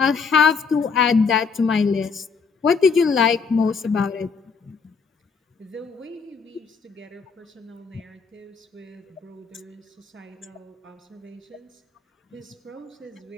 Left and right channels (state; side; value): quieter; right; 5.3 dB